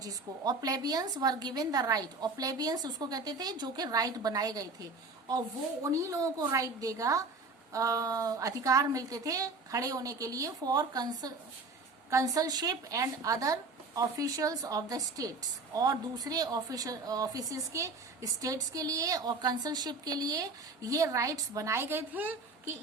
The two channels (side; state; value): left; quieter; 3.6 dB